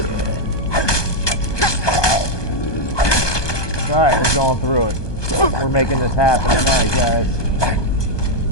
Alright, we're going through it. We're making this happen tonight, guys.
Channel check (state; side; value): late; right; 1.2 ms